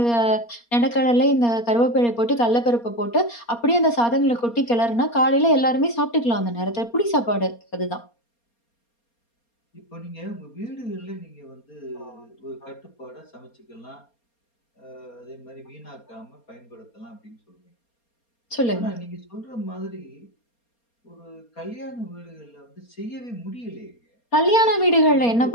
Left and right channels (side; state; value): right; late; 4.3 ms